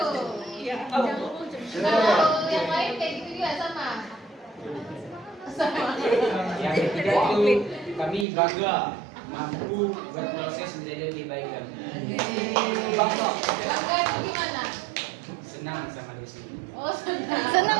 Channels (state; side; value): drops out; left; at 8.2 s